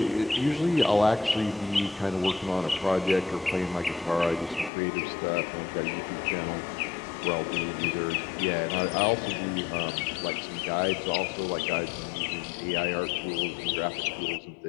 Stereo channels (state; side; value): drops out; right; at 4.7 s